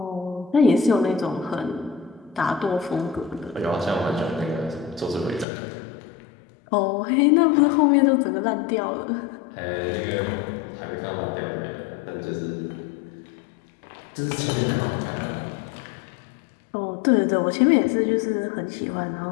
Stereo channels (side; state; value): right; drops out; at 5.5 s